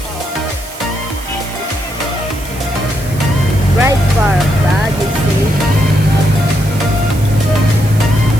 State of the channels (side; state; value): right; noise; hiss, 16 dB below the sound